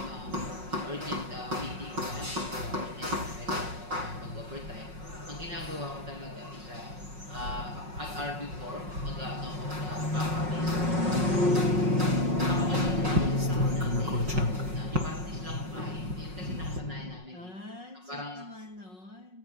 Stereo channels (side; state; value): left; late; 5.5 ms